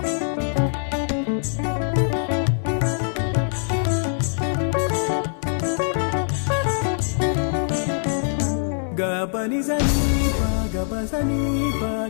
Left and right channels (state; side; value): silent; right; digital silence